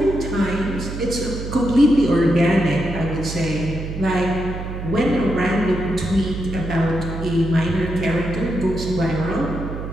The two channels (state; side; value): noise; right; hum, 7 dB below the sound